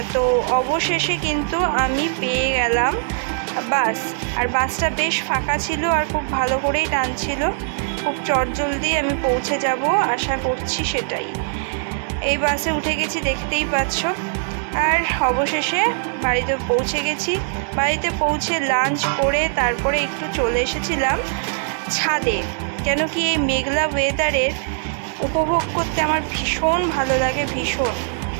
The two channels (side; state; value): left; silent; digital silence